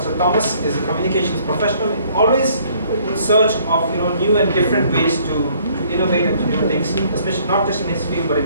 Thomas is a communications professional, always in search of new and different ways to innovate and to do things, especially not just in his field but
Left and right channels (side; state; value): both; inverted; correlation -0.62